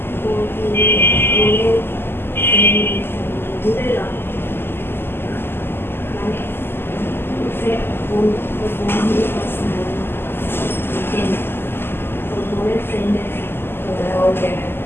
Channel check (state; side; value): late; right; 0.11 ms